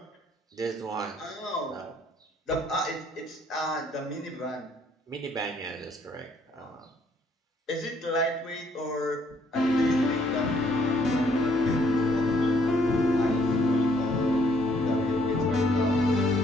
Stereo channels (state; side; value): normal; both; correlation 0.66